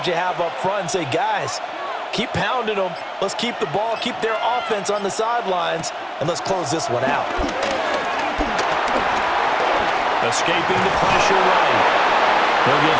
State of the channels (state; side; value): identical; both; correlation 1.00